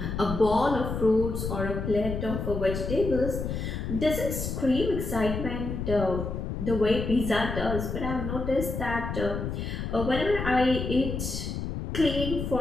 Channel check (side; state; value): left; noise; rumble, 4 dB below the sound